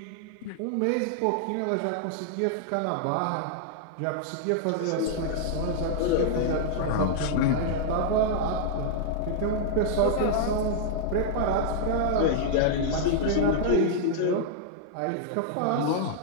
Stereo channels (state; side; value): different; both; correlation -0.01